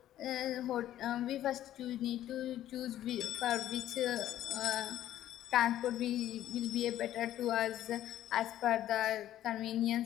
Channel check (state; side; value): quieter; right; 12.6 dB